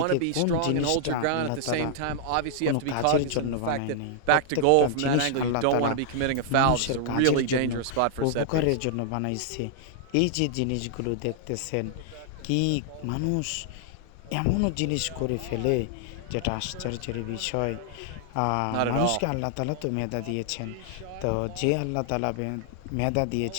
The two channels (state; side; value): different; both; correlation 0.00